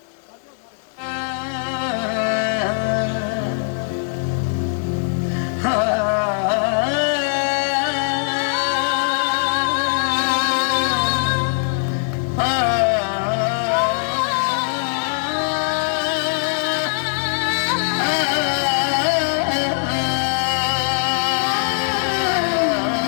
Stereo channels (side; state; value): right; silent; digital silence